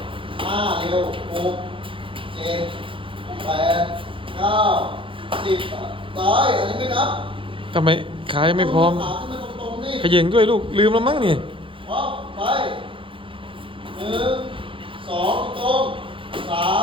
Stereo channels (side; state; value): left; late; 0.25 ms